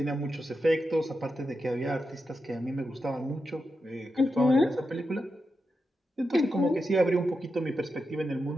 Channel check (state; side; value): normal; both; correlation 0.88